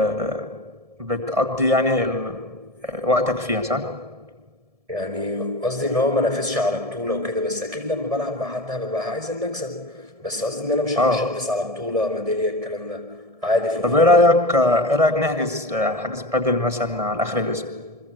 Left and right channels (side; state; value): left; late; 1.7 ms